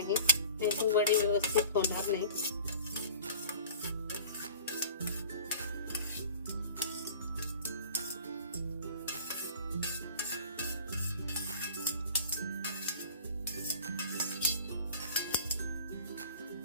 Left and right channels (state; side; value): inverted; both; correlation -0.42